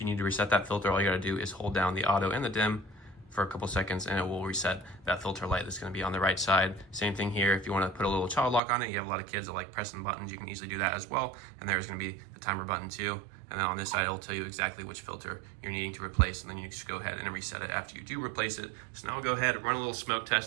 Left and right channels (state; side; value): drops out; left; at 8.6 s